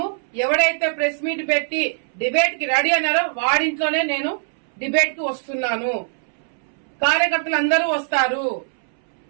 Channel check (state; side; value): silent; left; 64 dB below the other